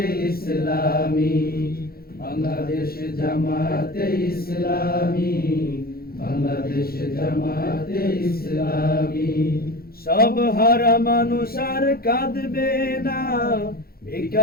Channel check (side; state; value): right; late; 0.44 ms